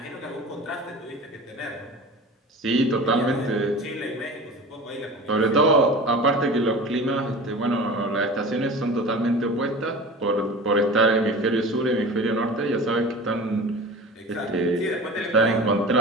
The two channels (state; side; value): normal; both; correlation 0.36